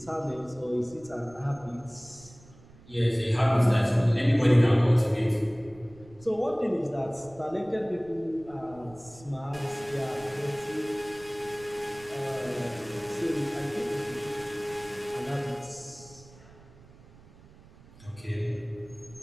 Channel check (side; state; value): right; noise; rumble, 23 dB below the sound